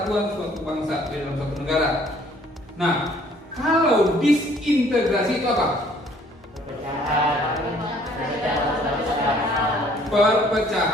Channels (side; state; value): both; normal; correlation 0.59